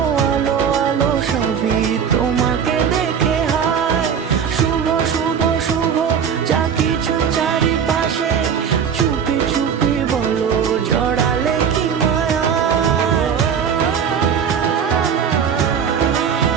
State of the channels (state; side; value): quieter; left; 7.4 dB